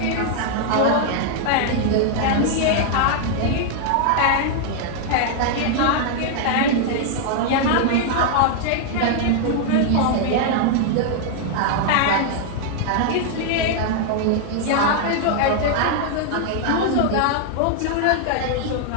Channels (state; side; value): different; both; correlation 0.00